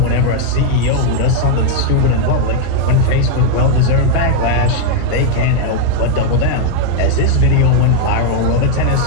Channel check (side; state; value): both; different; correlation 0.00